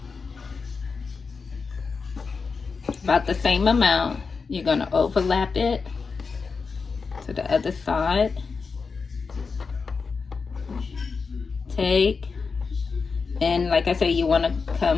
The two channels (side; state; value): right; quieter; 4.9 dB